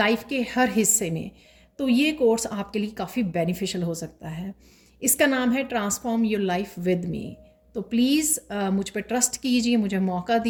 के हर हिस्से में, तो ये कोर्स आपके लिए काफ़ी बेनिफिशियल हो सकता है। इसका नाम है transform your life with me. तो प्लीज़ मुझ पर ट्रस्ट कीजिए, मुझे मौका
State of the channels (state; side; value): identical; both; correlation 1.00